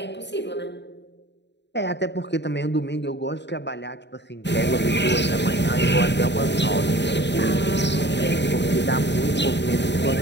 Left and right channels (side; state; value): right; late; 0.51 ms